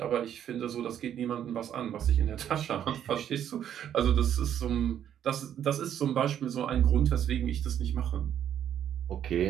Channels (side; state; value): left; quieter; 9.9 dB